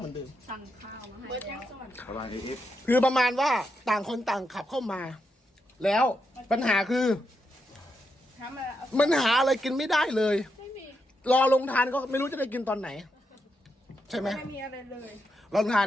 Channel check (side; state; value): both; normal; correlation 0.83